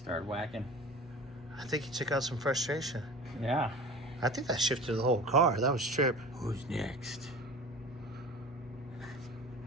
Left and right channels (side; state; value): both; normal; correlation 0.38